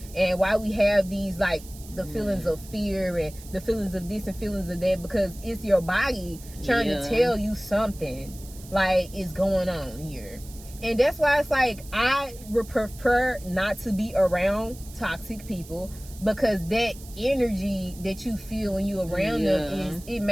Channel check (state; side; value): noise; right; hiss, 19 dB below the sound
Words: and why we have these, like, the feelings of fear and the feelings of this and feelings of that, because it's your body trying to tell you something like is going on here. And that's why it's like I would prefer not to be around toxic people, because that energy that you feel when you're around them it